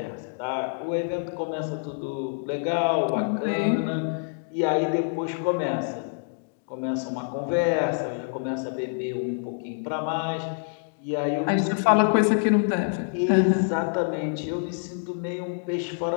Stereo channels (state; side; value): silent; right; digital silence